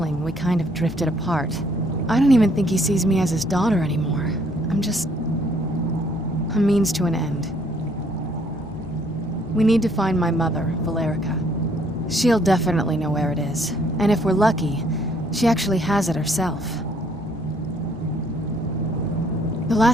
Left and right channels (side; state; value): both; normal; correlation 0.65